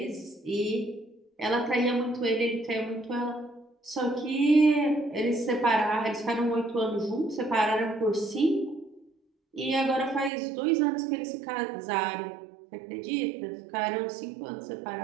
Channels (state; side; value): drops out; left; at 10.3 s